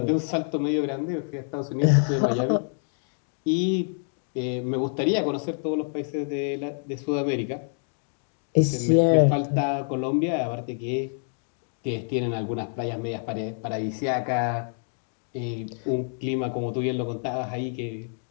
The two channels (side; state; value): right; silent; digital silence